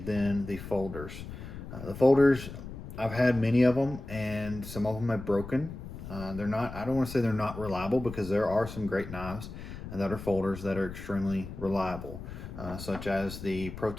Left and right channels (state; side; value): noise; left; rumble, 11 dB below the sound